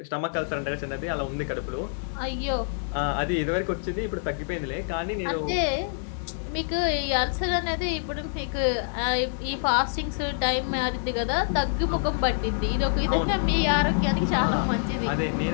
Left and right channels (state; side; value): silent; right; 61 dB below the other